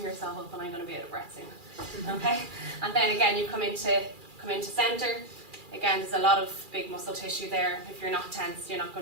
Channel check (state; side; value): late; left; 2.4 ms